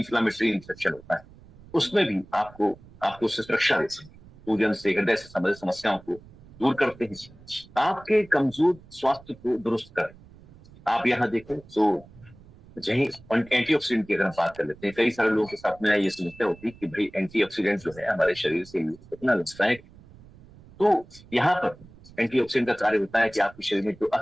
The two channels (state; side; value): noise; right; rumble, 22 dB below the sound